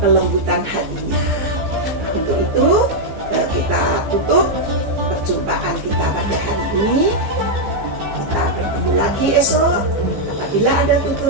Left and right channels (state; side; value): late; left; 15 ms